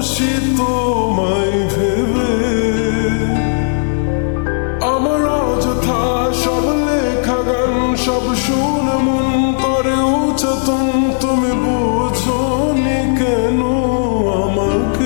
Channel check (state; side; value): silent; right; digital silence